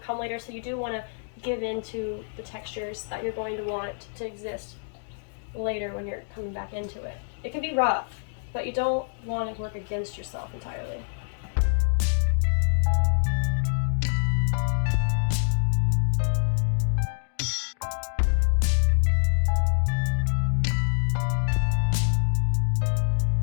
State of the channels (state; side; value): silent; right; digital silence